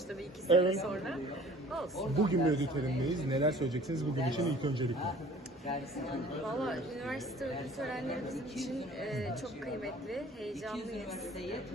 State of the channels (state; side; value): normal; both; correlation 0.49